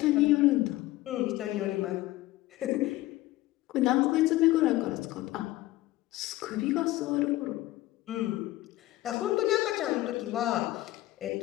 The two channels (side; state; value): right; quieter; 17.0 dB